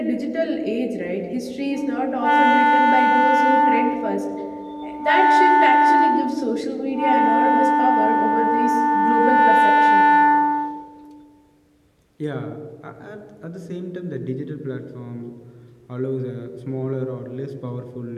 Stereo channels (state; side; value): identical; both; correlation 1.00